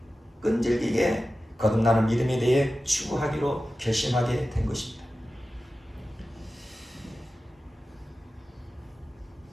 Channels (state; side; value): normal; both; correlation 0.94